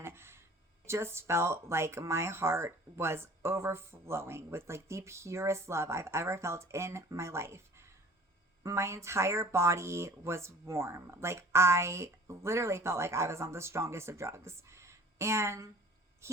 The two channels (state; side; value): normal; both; correlation 0.47